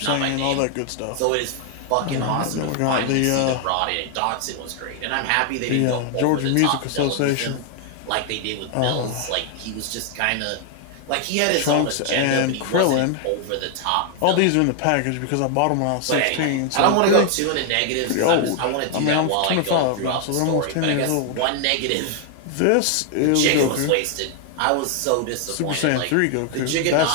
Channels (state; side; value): different; both; correlation 0.00